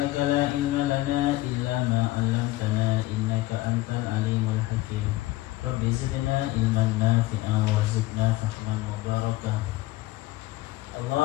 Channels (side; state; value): right; quieter; 17.9 dB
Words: la ilma lana illa ma 'allamtana innaka antal alimul hakim. Rabbi zidna ilman nafi'an warzuqna fahman mubarakah.